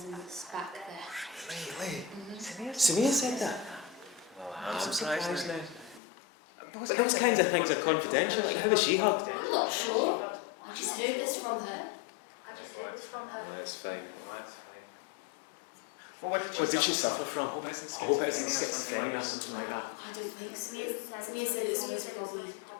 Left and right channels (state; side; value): drops out; right; at 6.0 s